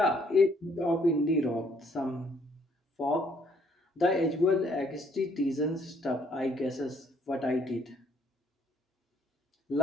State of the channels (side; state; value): both; normal; correlation 0.66